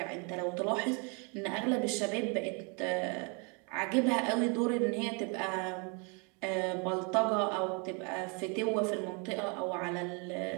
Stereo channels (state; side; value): quieter; left; 34.2 dB